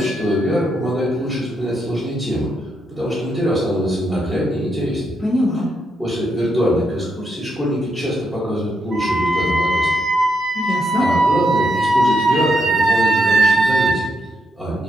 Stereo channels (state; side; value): normal; both; correlation 0.80